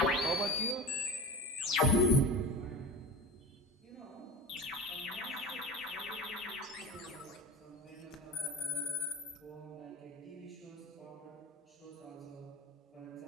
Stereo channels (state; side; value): normal; both; correlation 0.32